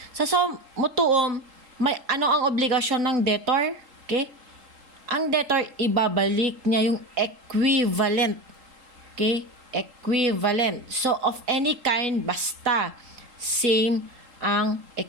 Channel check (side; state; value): left; late; 3.8 ms